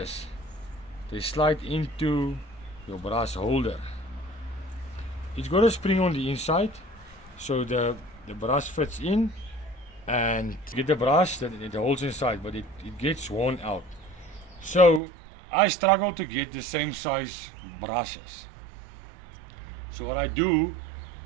they slide into your brush holder. It's got a spring on the inside, so the brush fits in, and you get the brush that it holds inside, but it gets worn out. So I struggle to get the same size brushes. So what I do,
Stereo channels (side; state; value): left; drops out; at 15.0 s